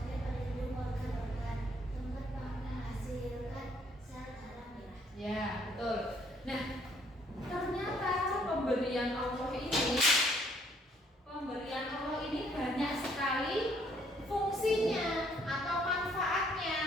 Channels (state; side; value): normal; both; correlation 0.65